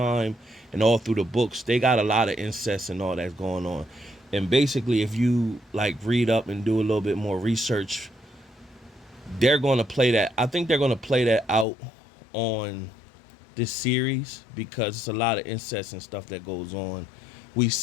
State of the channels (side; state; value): right; drops out; at 11.7 s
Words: and all through the books, they got a lot of incest and all that's going on. And basically, if you like read up and do a little bit more research, they're going to play that. I think they're going to play that out on this series because it's a lot of incest and stuff that goes on. We've